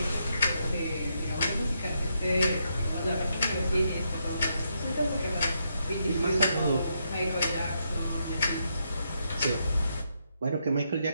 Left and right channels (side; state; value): both; inverted; correlation -0.79